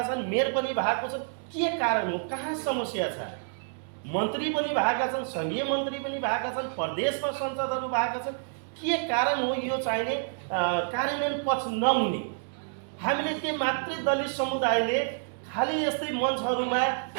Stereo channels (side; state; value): left; silent; digital silence